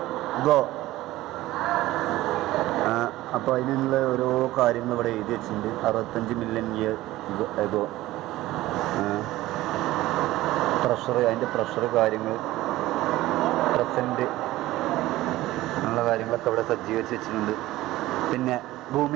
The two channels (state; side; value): quieter; left; 16.7 dB